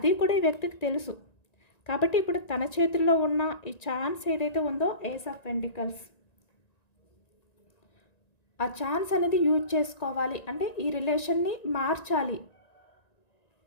కూడా ఈ వ్యక్తికి తెలుసు. కాబట్టి ఇప్పుడు తన చేతుల్లో ఉన్న ఈ ఛాన్స్ ఏదైతే ఉందో ఏస్ ఆఫ్ పెంటికల్స్, ఆ ఛాన్స్ అనేది యూజ్ చేసుకోవాలి. అంటే ఈ రిలేషన్ని మార్చాలి,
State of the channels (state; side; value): late; right; 1.9 ms